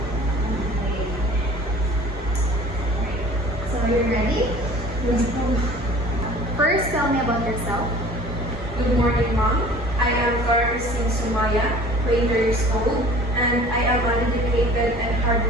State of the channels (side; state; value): both; normal; correlation 0.47